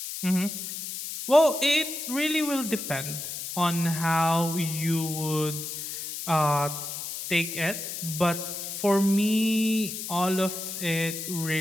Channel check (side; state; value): left; noise; hiss, 6 dB below the sound